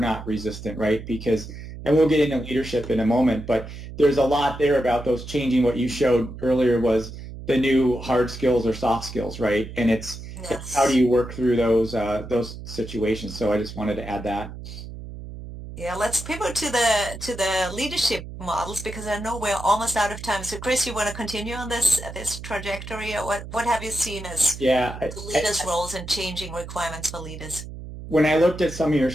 resistant, right? Because, and we'll get into leadership in a moment, but there's a lot there about those changing. What you showed earlier was the new hard skills or soft skills, right? And it's how do Yes. you work through those situations? So I just wanted to add that. Yeah, let's pivot to the leadership models because I know we're almost out of time. So Chris, you want to continue on this trajectory, or what have you seen as Yeah, the leaders' roles and changing requirements for leaders? when I looked at some of your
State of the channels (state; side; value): noise; right; hum, 11 dB below the sound